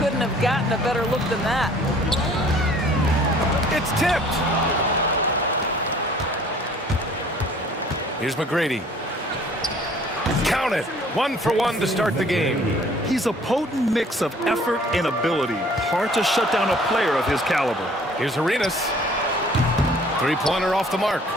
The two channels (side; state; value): both; normal; correlation 0.54